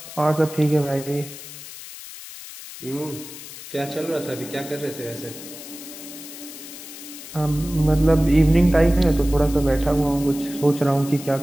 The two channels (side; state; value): left; noise; hiss, 14 dB below the sound